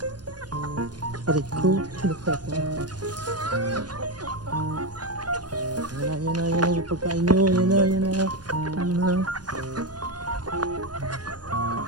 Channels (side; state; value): left; late; 0.69 ms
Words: Aray ko, sinuka ko. Yan na yung pagkain nyo. Yan na.